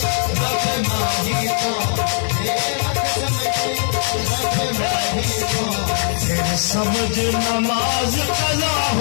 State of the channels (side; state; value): right; silent; 63 dB below the other